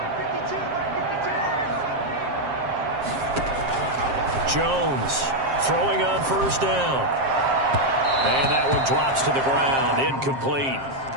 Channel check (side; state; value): left; late; 7.5 ms